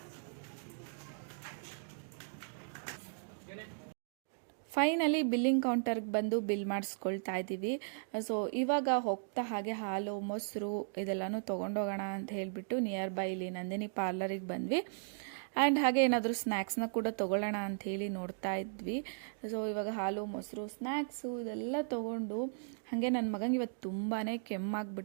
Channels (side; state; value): left; silent; digital silence